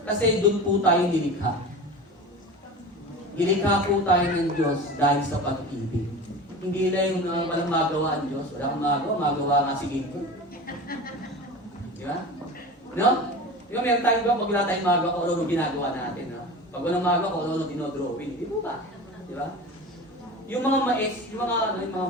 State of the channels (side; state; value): both; normal; correlation 0.32